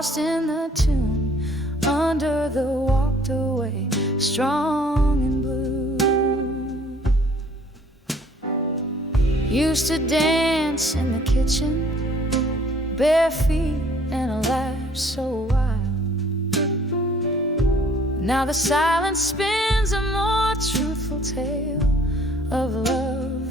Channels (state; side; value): normal; both; correlation 0.57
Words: in the tune, under the walked away, strong and blue. Used to dance in the kitchen, bare feet and a laugh so wild. Now the silence spins a more truthful tale of